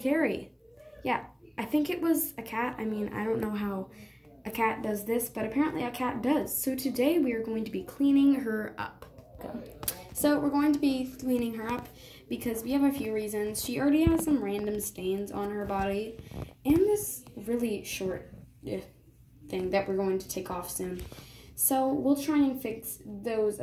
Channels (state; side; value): identical; both; correlation 1.00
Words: Yeah, I think it was a cat. I mean, I don't know how a cat does this, but apparently a cat does. So today we are going to be cleaning her up. So we're going to be cleaning her up because we have a few reasons. She already has some random stains on her body, and this really short thing that we're going to take off soon. So we'll try and fix those